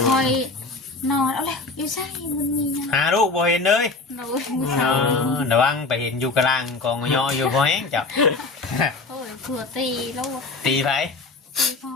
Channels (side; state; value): right; quieter; 3.7 dB